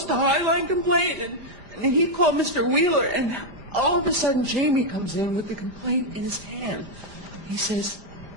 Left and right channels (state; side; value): late; left; 5.0 ms